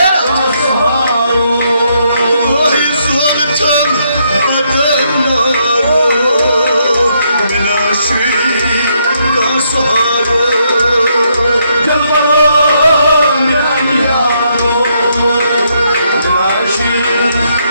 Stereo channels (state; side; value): inverted; both; correlation -0.75